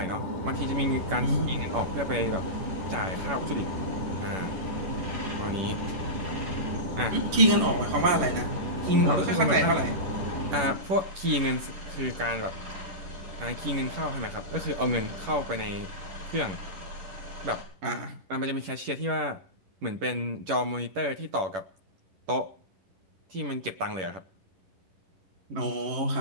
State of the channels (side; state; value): left; late; 11 ms